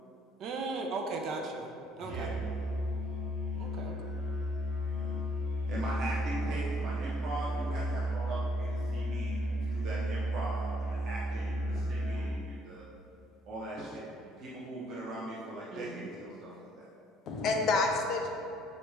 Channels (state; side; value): normal; both; correlation 0.68